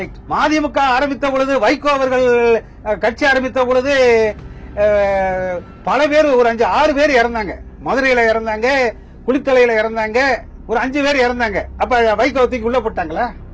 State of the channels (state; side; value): identical; both; correlation 1.00